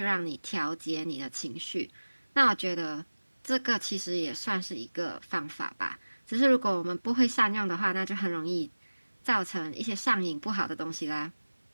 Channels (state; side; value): inverted; both; correlation -1.00